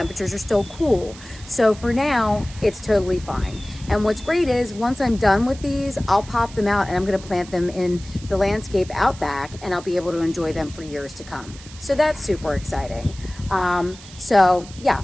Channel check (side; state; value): right; noise; hiss, 18 dB below the sound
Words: are still cool. So for now, it's totally fine. And what's great is once I'm done with these, I'll pop them out and I'm going to plant them in the landscape out back and I'll be able to enjoy them for years to come. So that's super exciting. So yeah,